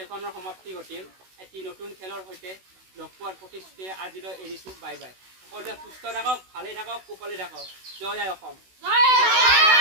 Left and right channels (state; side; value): late; left; 16 ms